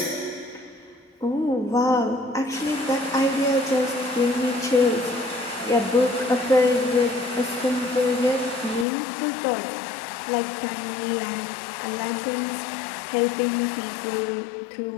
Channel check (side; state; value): right; drops out; at 8.8 s